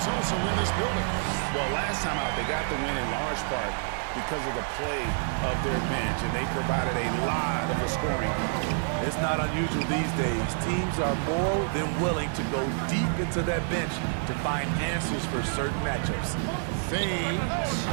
also in this building. Well, last time out, they got the win in large part because of the play of their bench, and they provided a lot of the scoring. It's not unusual these days. Teams are more than willing to go deep into that bench to find answers for certain matchups. Fades.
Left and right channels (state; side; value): silent; left; 59 dB below the other